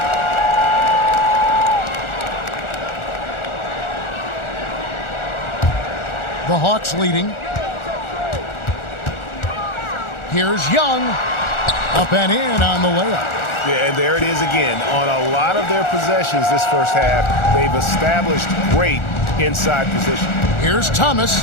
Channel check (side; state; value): right; late; 1.4 ms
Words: The Hawks leading. Here's Young. Up and in on the layup. Yeah, and there it is again. On a lot of their possessions this first half, they've established great inside position. Here's